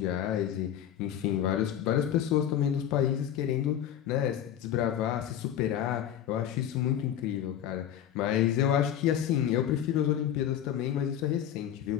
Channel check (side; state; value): right; quieter; 10.4 dB